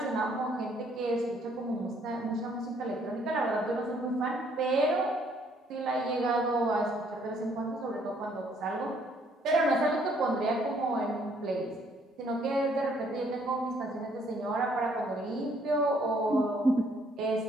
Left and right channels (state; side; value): normal; both; correlation 0.65